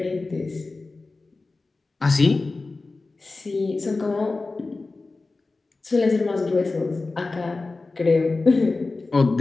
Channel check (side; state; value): right; quieter; 3.6 dB